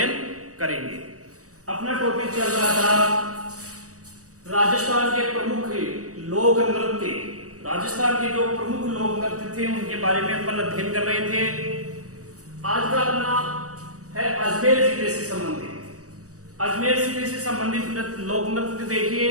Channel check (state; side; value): late; left; 0.66 ms